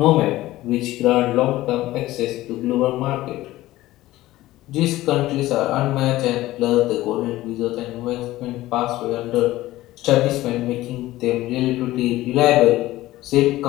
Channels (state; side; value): quieter; right; 16.6 dB